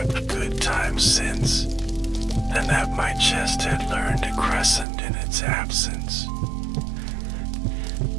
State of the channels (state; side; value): drops out; left; at 4.9 s